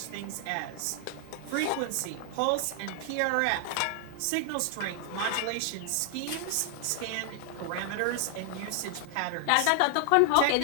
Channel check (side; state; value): both; different; correlation 0.00